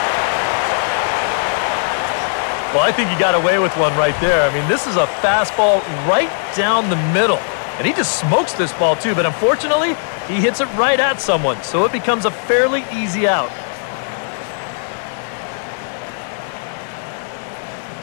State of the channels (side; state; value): right; silent; digital silence